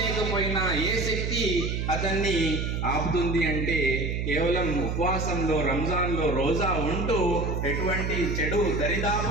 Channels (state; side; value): noise; right; hum, 1 dB below the sound